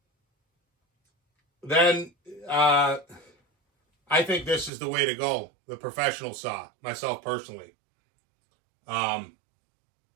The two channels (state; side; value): drops out; left; at 4.7 s